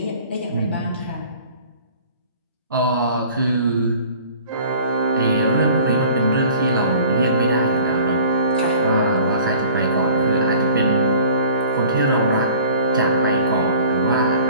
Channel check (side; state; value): both; inverted; correlation -0.49